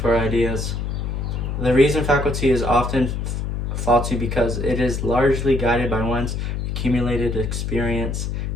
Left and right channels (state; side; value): noise; left; hum, 2 dB below the sound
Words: ideas. The reason faculty is often faulty because it is largely guided by one's accumulated experience.